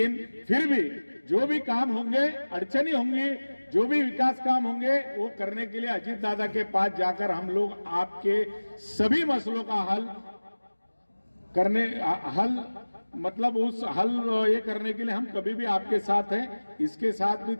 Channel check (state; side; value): inverted; both; correlation -1.00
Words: फिर भी जो भी काम होंगे, अड़चनी होंगी, जो भी विकास काम होंगे, वो करने के लिए अजीत दादा के पास जाकर हम लोग आपके सभी मसलों का मतलब उस हल ये करने के लिए हम कभी भी आपके साथ हैं, इसके साथ भी